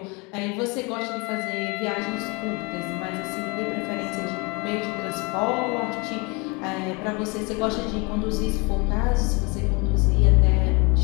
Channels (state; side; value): quieter; right; 28.9 dB